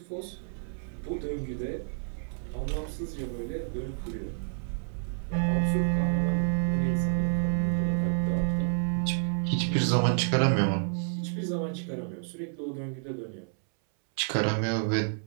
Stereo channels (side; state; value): left; silent; 58 dB below the other